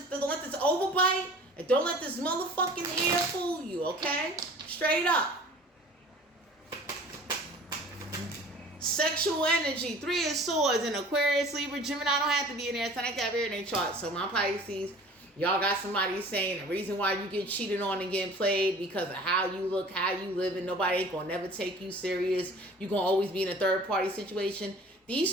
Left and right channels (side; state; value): both; normal; correlation 0.45